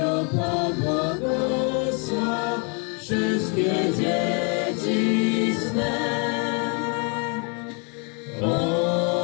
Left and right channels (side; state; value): right; quieter; 36.5 dB